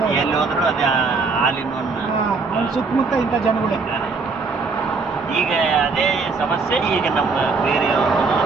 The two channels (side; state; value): left; quieter; 4.4 dB